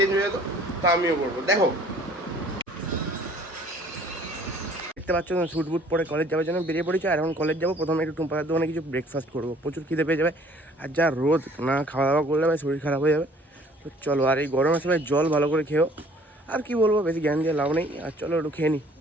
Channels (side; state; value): both; normal; correlation 0.55